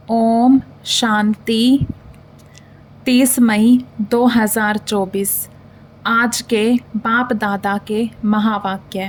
ओम शांति। 30 मई 2024 आज के बाप दादा के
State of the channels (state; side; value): identical; both; correlation 1.00